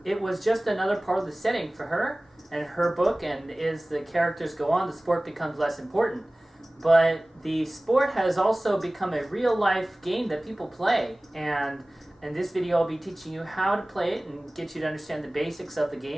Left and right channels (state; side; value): normal; both; correlation 0.98